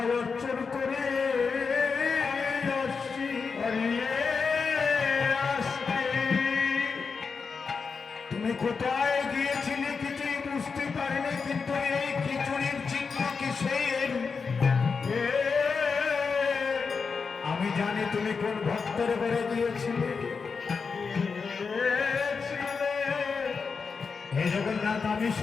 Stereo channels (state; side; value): quieter; right; 5.2 dB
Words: অর্চন করে আসছি। তুমি কোথায় গিয়েছিলে কিছুই বুঝতে পারিনি, কিন্তু এই খিচুড়ির চিহ্ন কিসের আমি জানি। তুমি কোন ভক্তের ঘরে গিয়েছিলে। হে জগন্নাথ, আমি